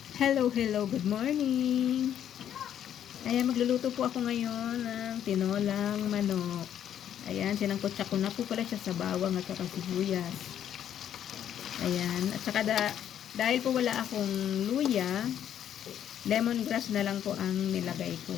Hello, hello, good morning. Ayan, magluluto po ako ngayon ng tinolang manok. Ayan, sinangkotsa ko na po pala siya sa bawang at saka sibuyas. Ayan, at saka dahil po wala akong luya, lemongrass na lang po ang nilagay ko.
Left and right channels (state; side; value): quieter; right; 10.0 dB